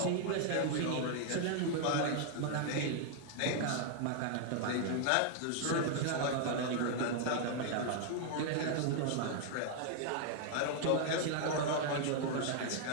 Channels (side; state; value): both; different; correlation 0.00